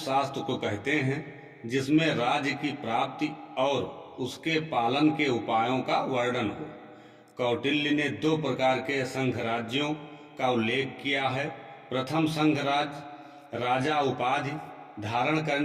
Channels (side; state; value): both; identical; correlation 1.00